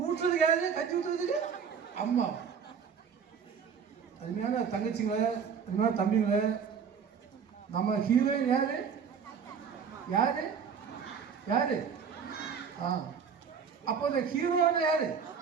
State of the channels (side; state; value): left; quieter; 6.7 dB